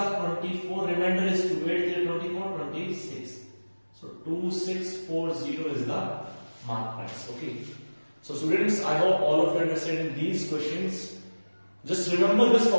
24. Remainder is 2. 8 3 24 26. So 2640 is the mark price. Okay. So students, I hope all of you understand these questions. Just remember this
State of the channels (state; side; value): inverted; both; correlation -1.00